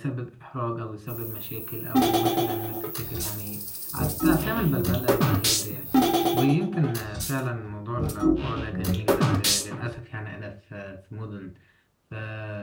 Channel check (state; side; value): identical; both; correlation 1.00